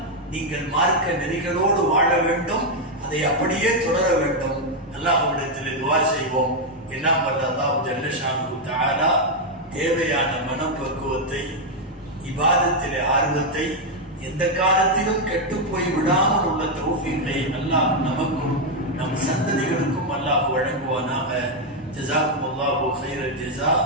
நீங்கள் மார்க்க நெறிகளோடு வாழ வேண்டும். அதை அப்படியே தொடர வேண்டும். அல்லாஹ்விடத்தில் துஆ செய்வோம். எல்லாம் வல்ல அல்லாஹ் ஜல்ல ஷானுஹு தஆலா தேவையான மனப்பக்குவத்தை, இபாதத்திலே ஆர்வத்தை, எந்த காலத்திலும் கெட்டு போய் விடாமல் உள்ள தௌஃபீகை அல்லாஹ் நமக்கும் நம் சந்ததிகளுக்கும் அல்லாஹ் வழங்குவானாக. ஜஸாக்குமுல்லாஹு கைரல் ஜஸா.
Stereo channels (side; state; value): both; normal; correlation 0.01